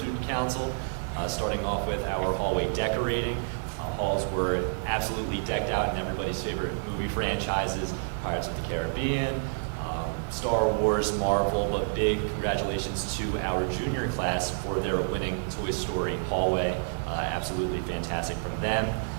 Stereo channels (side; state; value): left; silent; digital silence